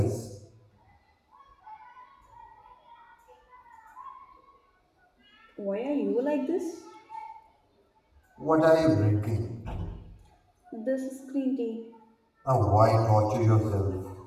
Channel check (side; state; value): both; identical; correlation 1.00